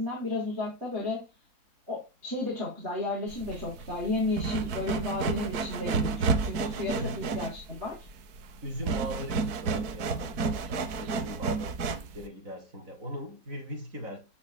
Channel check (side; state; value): left; late; 4.5 ms